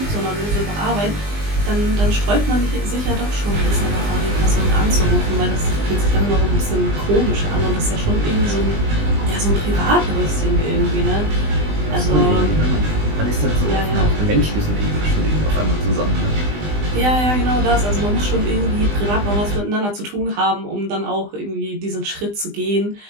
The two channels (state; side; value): late; left; 20 ms